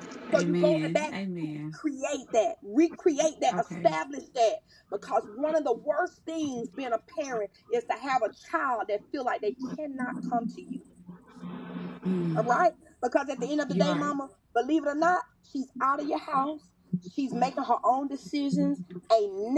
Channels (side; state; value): both; identical; correlation 1.00